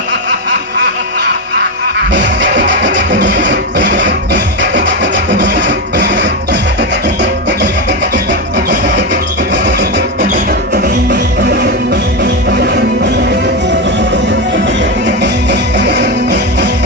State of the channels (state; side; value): normal; both; correlation 0.11